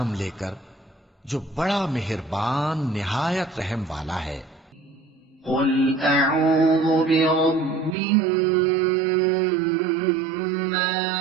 لے کر جو بڑا مہربان نہایت رحم والا ہے۔ قل اعوذ برب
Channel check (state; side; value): drops out; left; at 8.0 s